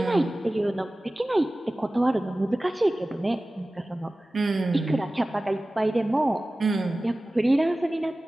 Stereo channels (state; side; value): normal; both; correlation 0.97